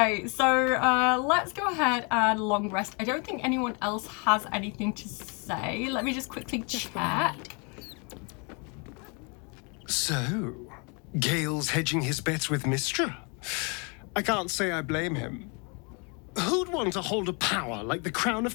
so let's go ahead and long rest. I don't think anyone else has anything to say. Let me just quickly check. So, Gale's hedging his bets with Mystra? I can't say I blame him. Who'd want to hold a power like the crown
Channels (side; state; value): right; quieter; 33.8 dB